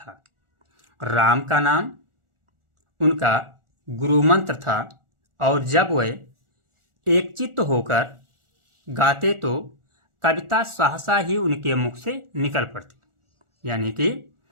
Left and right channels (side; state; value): left; late; 1.4 ms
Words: राम का नाम उनका गुरु मंत्र था और जब वे एकचित्त होकर गाते तो कविता सहसा ही उनके मुख से निकल पड़ती। यानी कि